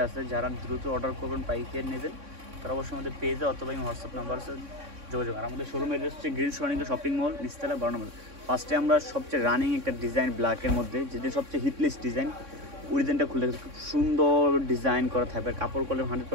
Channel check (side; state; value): left; late; 3.6 ms